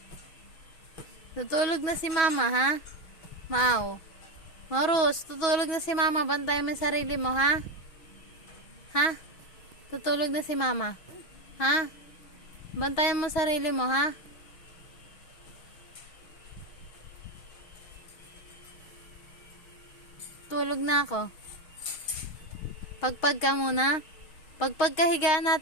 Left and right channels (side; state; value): right; late; 6.2 ms